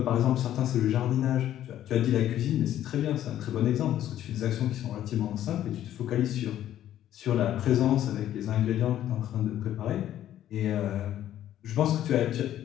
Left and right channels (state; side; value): quieter; right; 11.9 dB